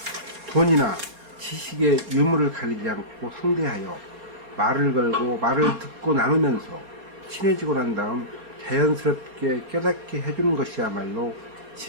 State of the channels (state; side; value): late; left; 4.5 ms